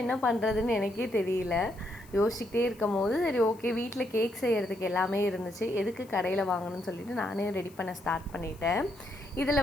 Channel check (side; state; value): left; noise; hiss, 26 dB below the sound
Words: என்ன பண்ணுறதுன்னு எனக்கே தெரியல. யோசிச்சுக்கிட்டே இருக்கும் போது சரி, ஓகே, வீட்டில் கேக் செய்கிறதுக்கு எல்லாமே இருந்துச்சு. எதுக்கு கடையில் வாங்கணும்னு சொல்லிட்டு நானே ரெடி பண்ண ஸ்டார்ட் பண்ணிட்டேன்.